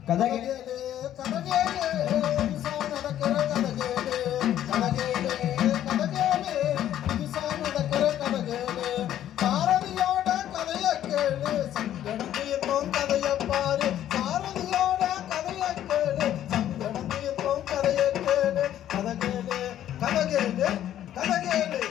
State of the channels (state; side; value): quieter; right; 11.6 dB